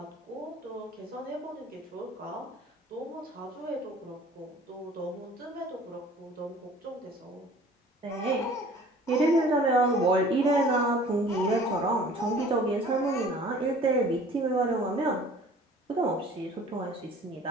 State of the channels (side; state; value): both; normal; correlation 0.49